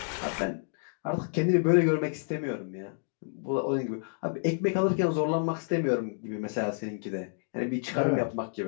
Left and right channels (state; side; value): silent; right; digital silence